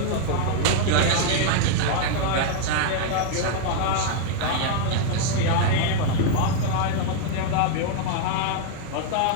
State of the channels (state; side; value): different; both; correlation 0.00